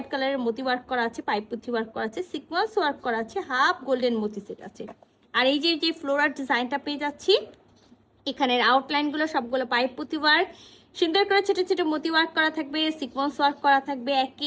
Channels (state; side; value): identical; both; correlation 1.00